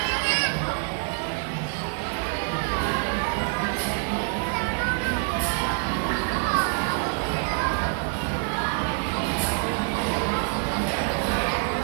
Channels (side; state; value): left; quieter; 38.5 dB